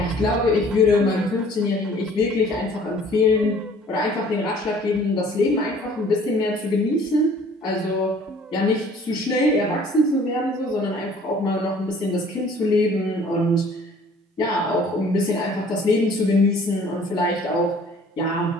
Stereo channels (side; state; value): both; normal; correlation 0.53